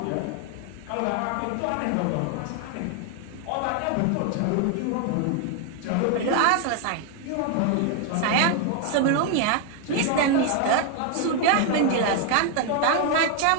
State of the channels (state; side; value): different; both; correlation 0.01